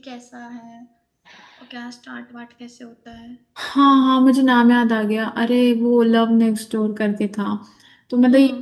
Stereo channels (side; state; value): both; identical; correlation 1.00